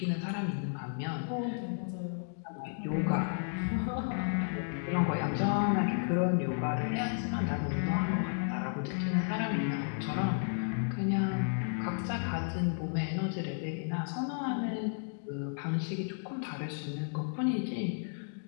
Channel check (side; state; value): right; silent; digital silence